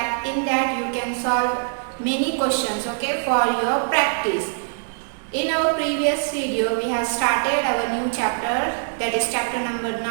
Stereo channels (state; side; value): silent; left; digital silence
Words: In that you can solve many questions, okay, for your practice. In our previous video, we have started our new chapter, that is chapter number